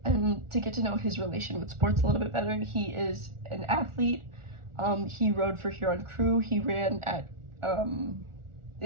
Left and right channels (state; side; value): late; left; 1.4 ms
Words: and to get to know his relation with sports a little bit better. He is an athlete. He rode for Huron Crew. He ran at